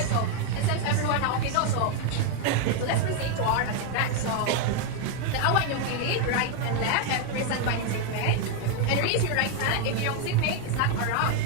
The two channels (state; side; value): different; both; correlation 0.01